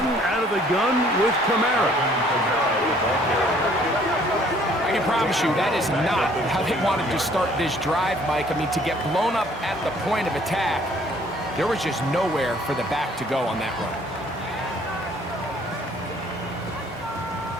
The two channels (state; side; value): normal; both; correlation 0.59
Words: out of the gun with Kamara. I can promise you that is not how they wanted to start this drive, Mike. I mean, to get blown up at the point of attack, there was just nowhere for the back to go on that run.